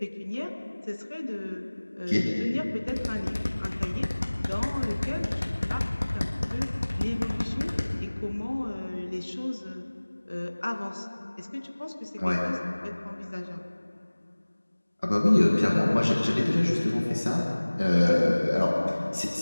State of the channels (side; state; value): both; inverted; correlation -1.00